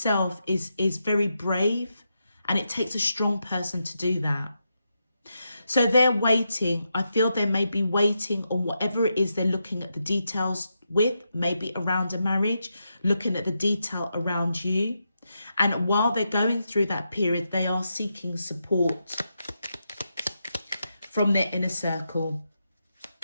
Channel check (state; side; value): inverted; both; correlation -0.85